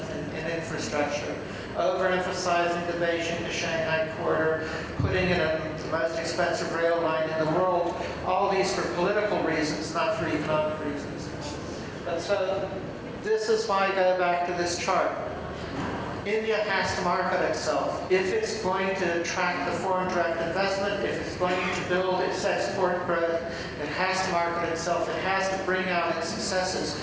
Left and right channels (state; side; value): identical; both; correlation 1.00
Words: in infrastructure, overemphasizing the Beijing to Shanghai corridor, putting in the most expensive rail line in the world, all these for political reasons, not for economic reasons. But so, this is why I go back to this chart. India has to market itself. If it's going to attract the foreign direct investment, if it's going to build its export growth, it has to market itself. It has to bring out its successes.